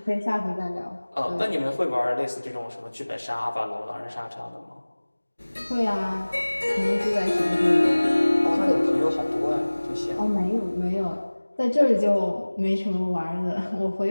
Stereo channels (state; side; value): inverted; both; correlation -1.00